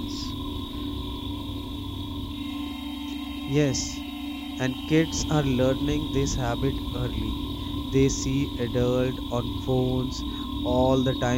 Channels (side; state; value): both; identical; correlation 1.00